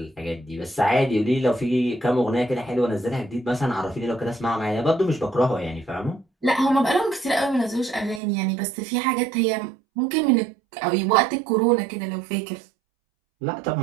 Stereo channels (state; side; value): drops out; left; at 8.2 s